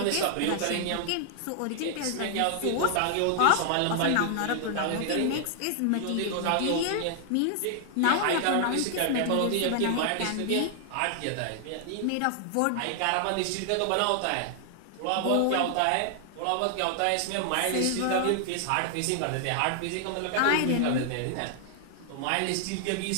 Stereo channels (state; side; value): different; both; correlation 0.00